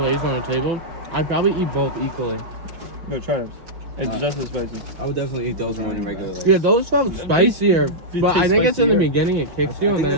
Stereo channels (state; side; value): late; left; 5.9 ms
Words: on the table, I'd probably eat both equally. No, try it. It's just as spicy. I would definitely eat those more than regular Lay's. Yeah, those felt spicier, These but I taste think it's in the spicier. beginning it kicks I you and think then